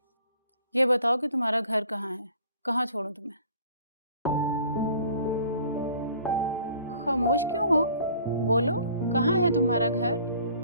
ये बताओ कि तुम्हारा घर कहाँ है? कहाँ छोड़ूं तुम्हें? खामोश क्यों हो? बोलो, कहाँ है तुम्हारा घर?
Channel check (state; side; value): inverted; both; correlation -0.53